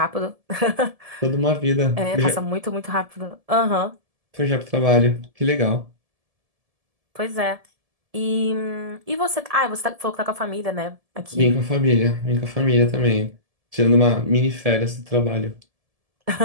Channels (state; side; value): late; left; 1.7 ms